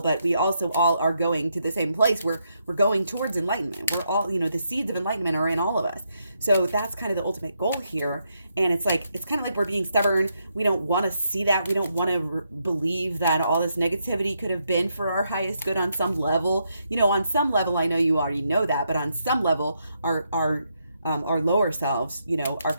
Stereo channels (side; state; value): both; inverted; correlation -0.79